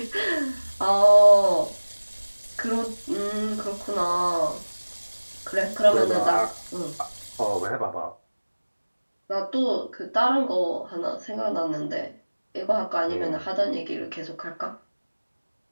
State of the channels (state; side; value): inverted; both; correlation -1.00